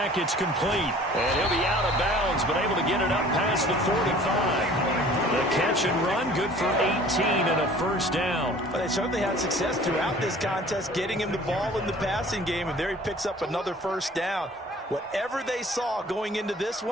It's complete. And he'll be out of bounds, but able to get it up past the 45. The catch and run, good for 18 and a first down. Well, they certainly had success throughout this contest, getting him the ball in the passing game, and there he picks up another first down. Whatever they saw going into this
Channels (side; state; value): both; normal; correlation 0.49